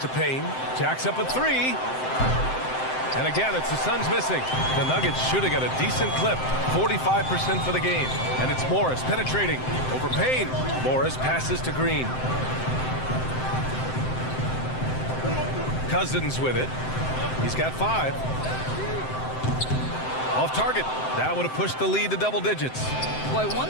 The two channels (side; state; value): right; late; 7.7 ms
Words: Payne. Jacks up a 3. And again, it's the Suns missing. The Nuggets shooting at a decent clip. 45% for the game. And it's Morris penetrating over Payne. Morris passes to Green. Cousins with it. He's got 5. Off target. That would have pushed the lead to double digits. Boy, one